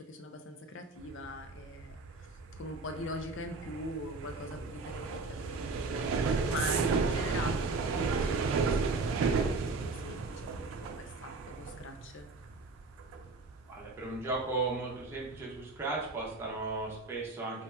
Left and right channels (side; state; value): left; quieter; 3.6 dB